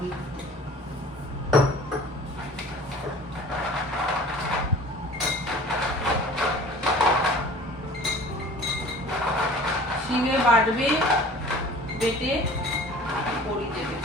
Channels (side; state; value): both; normal; correlation 0.45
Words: দিতে। শিলে বাটবে, বেটে বড়ি দেবে